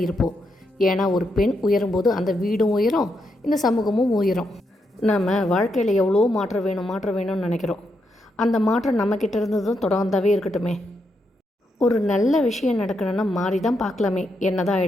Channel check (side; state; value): both; normal; correlation 0.81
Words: இருப்போம். ஏன்னா ஒரு பெண் உயரும்போது அந்த வீடும் உயரும், இந்த சமூகமும் உயரும். நம்ம வாழ்க்கையில் எவ்வளோ மாற்றம் வேணும்னு நினைக்கிறோம். அந்த மாற்றம் நம்மக்கிட்ட இருந்ததும் தொடர்ந்தாவே இருக்கட்டுமே. ஒரு நல்ல விஷயம் நடக்கணும்னா மாறி தான் பார்க்கலாமே, என்ன தான்